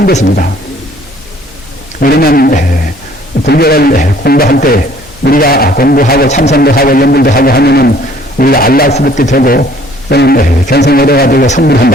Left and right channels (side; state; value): both; normal; correlation 0.58